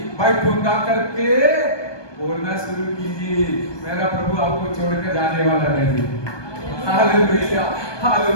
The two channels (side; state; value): right; late; 1.2 ms